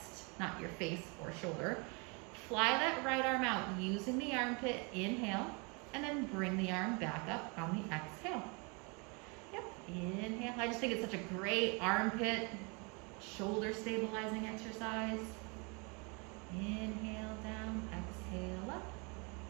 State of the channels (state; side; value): quieter; left; 31.7 dB